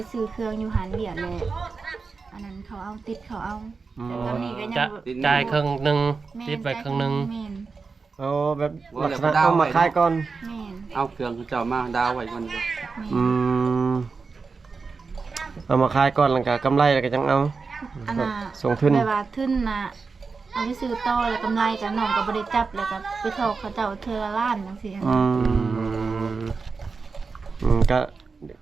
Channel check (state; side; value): quieter; left; 4.6 dB